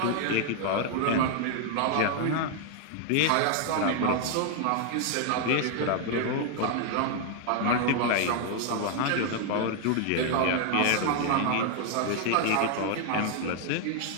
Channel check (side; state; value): both; different; correlation 0.00